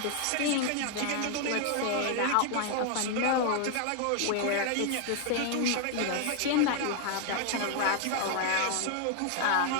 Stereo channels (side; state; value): both; different; correlation 0.00